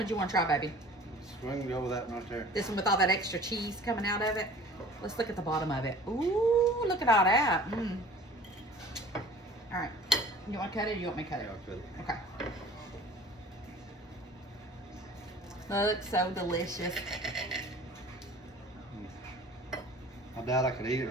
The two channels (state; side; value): normal; both; correlation 0.46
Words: you want to try, baby? We can go with that one right there. This one with all that extra cheese coming out of it? Let's look at the bottom of it. Ooh, look at all that. Mm. All right. You want to cut it or you want me to cut it? Yeah, I'll cut it. Okay. Looks so delicious. I doubt I could eat it